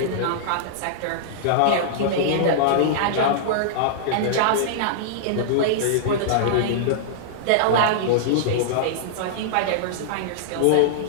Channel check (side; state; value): both; different; correlation -0.02